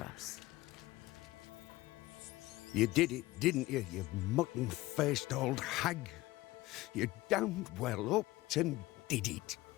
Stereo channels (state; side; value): quieter; right; 18.6 dB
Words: You did it, didn't you, you mutton-faced old hag? You damned well upped and did it.